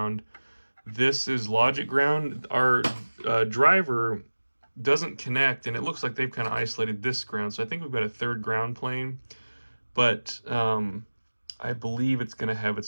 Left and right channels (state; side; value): inverted; both; correlation -1.00